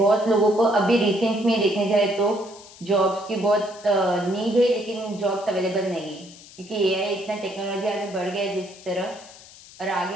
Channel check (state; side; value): noise; left; hiss, 20 dB below the sound